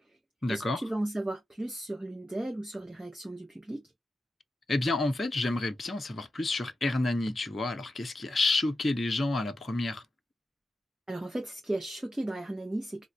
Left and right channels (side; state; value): both; normal; correlation 0.91